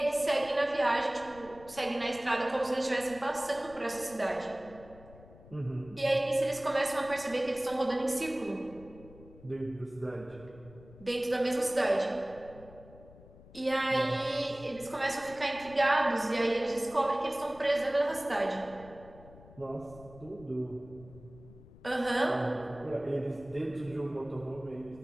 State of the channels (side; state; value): left; noise; rumble, 20 dB below the sound